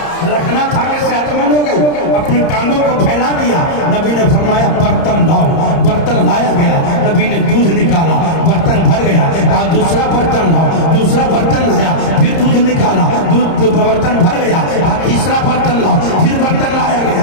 رکھنا تھا کہ صحت مند ہو گئی. اپنی ٹانگوں کو پھیلا دیا. نبی نے فرمایا برتن لاؤ, برتن لایا گیا. نبی نے دودھ نکالا, برتن بھر گیا. کہا دوسرا برتن لاؤ, دوسرا برتن لایا, پھر دودھ نکالا, دودھ برتن بھر گیا. کہا تیسرا برتن لاؤ, پھر برتن لایا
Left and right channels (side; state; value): right; late; 30 ms